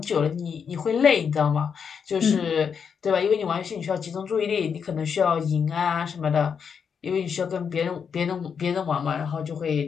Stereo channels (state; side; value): quieter; right; 6.7 dB